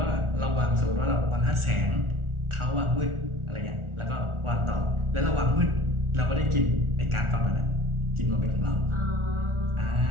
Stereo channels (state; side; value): late; left; 1.4 ms